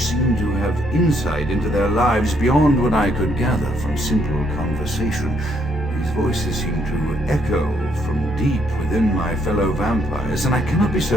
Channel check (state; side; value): normal; both; correlation 0.71